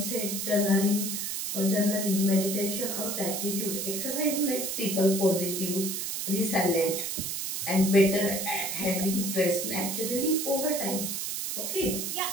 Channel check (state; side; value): noise; right; hiss, 2 dB below the sound